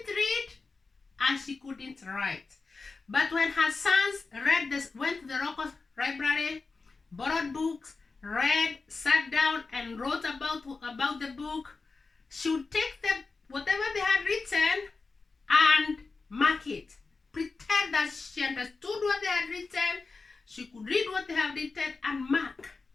read and she couldn't write. But when her sons went to the local library, borrowed books, read, sat down and wrote about the book, she would take whatever they had written and mark it. Pretend that she understood what they had written, she could read what they have written and mark.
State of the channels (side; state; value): right; quieter; 4.2 dB